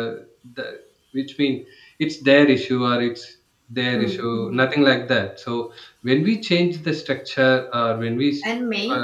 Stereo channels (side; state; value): both; identical; correlation 1.00